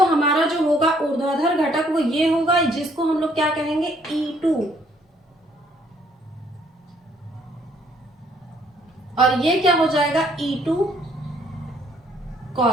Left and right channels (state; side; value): normal; both; correlation 0.65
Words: हमारा जो होगा ऊर्ध्वाधर घटक वो ये होगा, जिसको हम लोग क्या कहेंगे, E2। और ये क्या हो जाएगा, E2